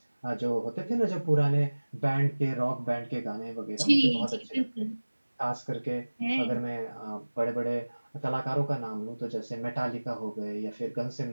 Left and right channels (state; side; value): inverted; both; correlation -1.00